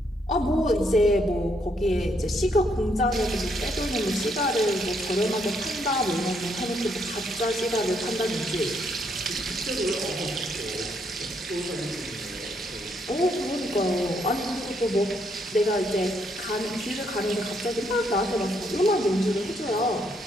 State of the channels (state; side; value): normal; both; correlation 0.73